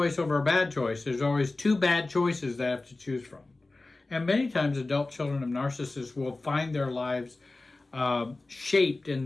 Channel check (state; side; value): quieter; right; 3.2 dB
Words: over a bad choice. There's always 2 bad choices that I have to choose from. And many times adult children of narcissists will find their lives shaped in